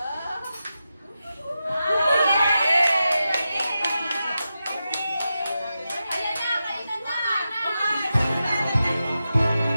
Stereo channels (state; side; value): inverted; both; correlation -0.90